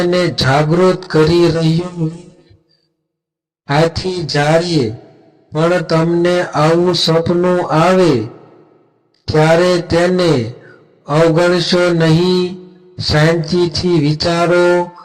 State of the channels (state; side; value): identical; both; correlation 1.00